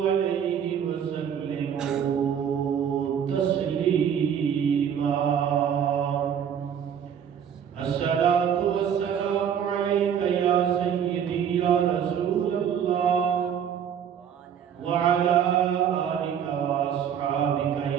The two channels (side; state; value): left; quieter; 8.4 dB